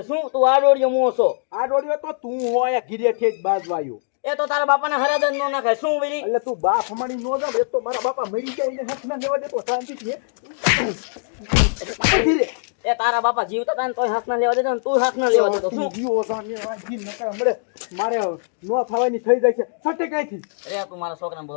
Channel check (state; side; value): silent; right; digital silence